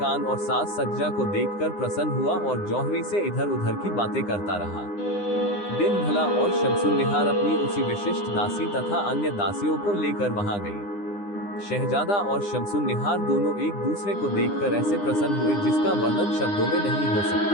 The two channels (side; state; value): right; late; 9.8 ms